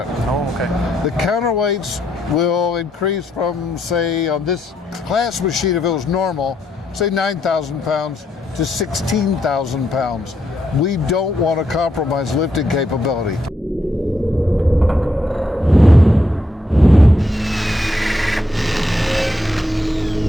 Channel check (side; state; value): both; normal; correlation 0.78